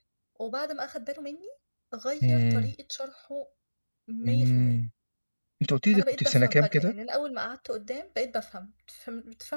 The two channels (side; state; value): both; inverted; correlation -1.00